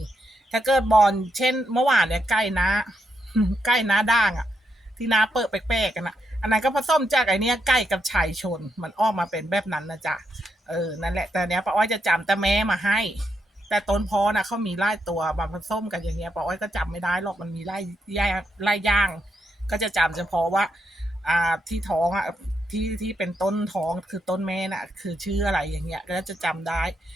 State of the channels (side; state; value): both; normal; correlation 0.81